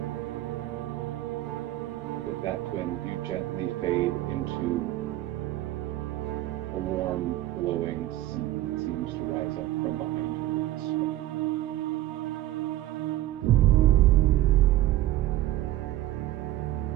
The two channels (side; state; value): left; quieter; 14.8 dB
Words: With that, Quinn, you gently fade into a warm, glowing sea that seems to rise up from behind you.